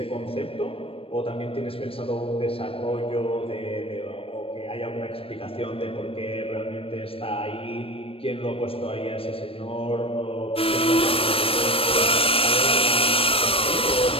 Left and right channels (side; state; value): right; late; 0.27 ms